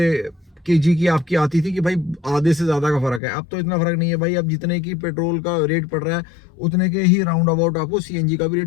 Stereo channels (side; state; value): right; drops out; at 3.2 s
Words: केजी की आपकी आती थी कि भाई आधे से ज़्यादा का फ़र्क है। अब तो इतना फ़र्क नहीं है भाई, अब जितने की पेट्रोल का रेट पड़ रहा है उतने के ही राउंड अबाउट आपको सीएनजी का भी